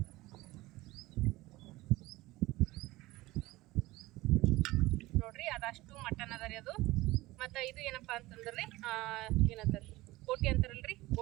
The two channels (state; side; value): quieter; left; 19.2 dB